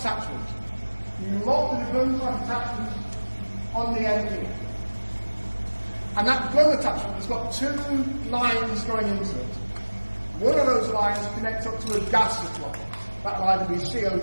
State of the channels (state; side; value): inverted; both; correlation -1.00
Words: You lock the gun type attachment on the end here. And that gun attachment has got two lines going into it. One of those lines connects up to a gas supply. That'll either be